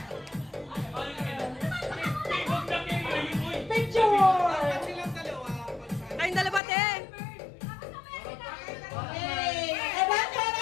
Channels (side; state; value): right; drops out; at 6.6 s